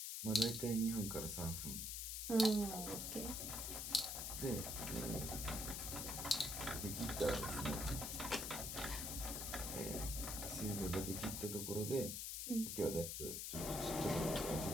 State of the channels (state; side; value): noise; left; hiss, 3 dB below the sound